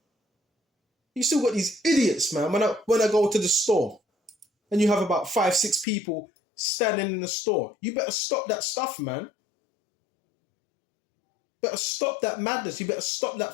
You still got these idiots, man. When I go to the store, and you have about 5, 6 people standing in the store, you better stop that stuff, man. Better stop that madness. You better stop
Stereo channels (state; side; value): drops out; right; at 5.9 s